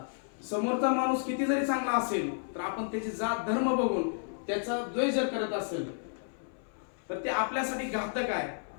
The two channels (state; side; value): silent; right; 57 dB below the other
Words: समोरचा माणूस किती जरी चांगला असेल तर आपण त्याची जात धर्म बघून त्याचा द्वेष जर करत असेल तर ते आपल्यासाठी घातक आहे.